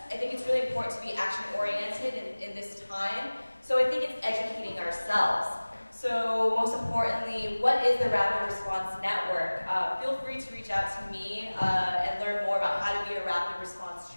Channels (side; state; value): both; inverted; correlation -1.00